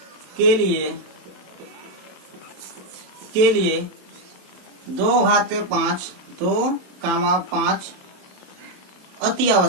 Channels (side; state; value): left; late; 27 ms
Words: के लिए 2 घाते 5 अति